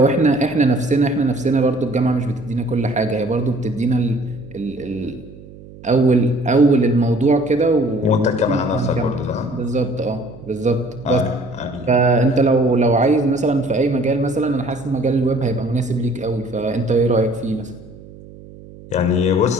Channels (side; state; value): right; noise; hum, 19 dB below the sound